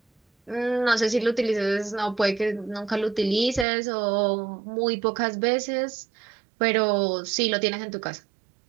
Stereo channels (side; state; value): left; drops out; at 3.7 s